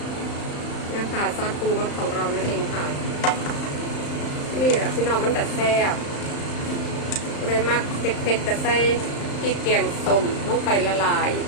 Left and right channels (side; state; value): right; late; 35 ms